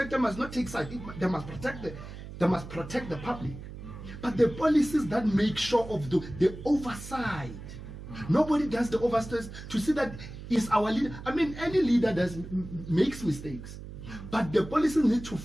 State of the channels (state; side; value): noise; right; hum, 12 dB below the sound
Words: must not take side. They must protect the public. But the policies that make sure of the oversight. Nobody does the oversight to see that is our leader. I mean, any leader makes mistakes, but the policies need to